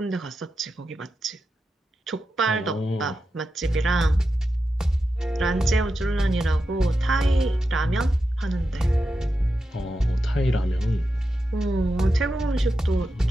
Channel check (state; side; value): normal; both; correlation 0.89